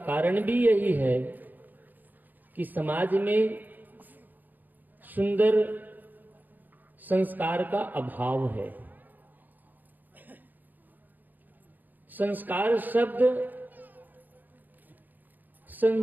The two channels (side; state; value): left; late; 0.086 ms